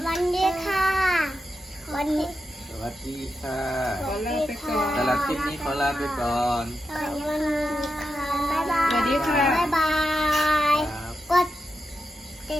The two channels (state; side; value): normal; both; correlation 0.88